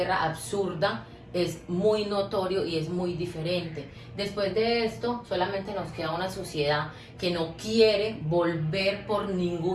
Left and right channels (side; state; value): both; identical; correlation 1.00